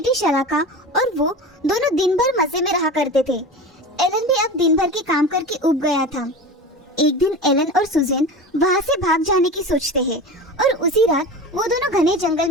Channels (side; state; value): both; normal; correlation 0.31